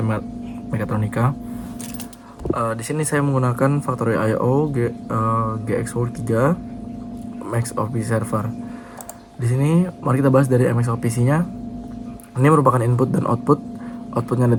mekatronika. Di sini saya menggunakan Factorio IO GXWorks 3 MXOP server. Di sini mari kita bahas dari MXOPC-nya. Ini merupakan input dan output. Outputnya ada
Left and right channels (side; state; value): both; identical; correlation 1.00